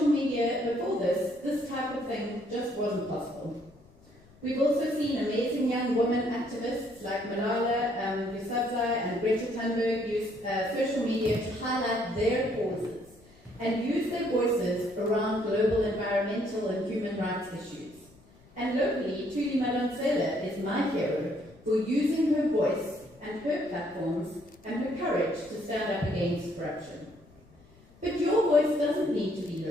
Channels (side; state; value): left; noise; rumble, 27 dB below the sound